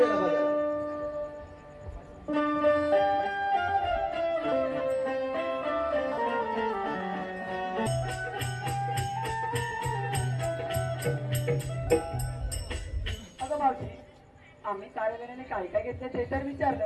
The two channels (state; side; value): identical; both; correlation 1.00